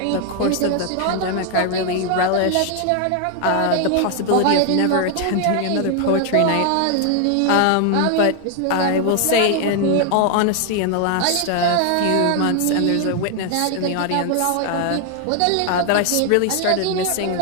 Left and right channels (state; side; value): different; both; correlation 0.00